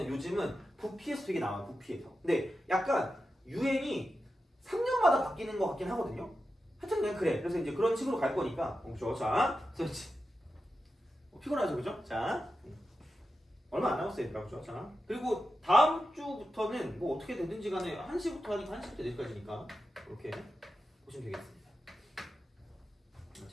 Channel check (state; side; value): normal; both; correlation 0.91